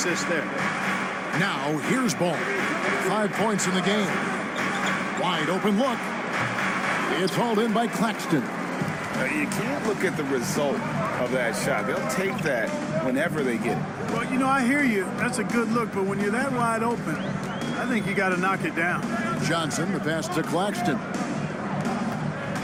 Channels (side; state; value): both; identical; correlation 1.00